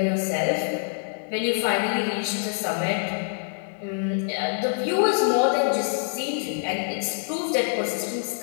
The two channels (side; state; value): right; silent; 61 dB below the other